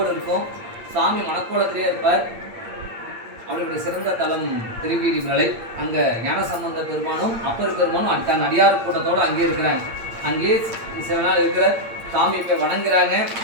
இருக்கும். சாமி மணக்கோலத்திலே இருப்பார். அவருடைய சிறந்த தலம் திருவீலிமிழலை. அங்க ஞானசம்பந்த பெருமானும் அப்பர் பெருமானும் தன் அடியார் கூட்டத்தோடு அங்கே இருக்கிறாங்க. அங்கேயே சில நாள் இருக்கிற சாமி போய் வணங்குறாங்க.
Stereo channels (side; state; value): left; late; 8.7 ms